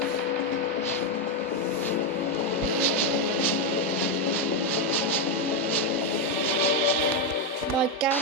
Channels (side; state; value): both; normal; correlation 0.05